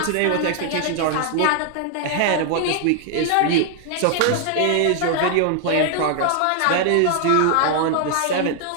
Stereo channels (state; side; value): different; both; correlation 0.00